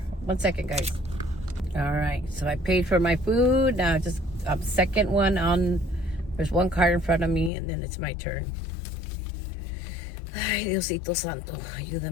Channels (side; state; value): right; drops out; at 7.5 s